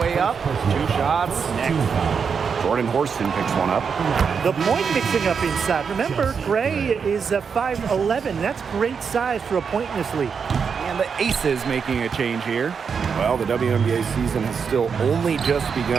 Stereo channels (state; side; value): quieter; left; 6.2 dB